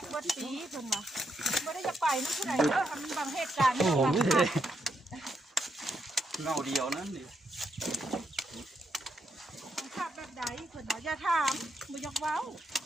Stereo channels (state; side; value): normal; both; correlation 0.79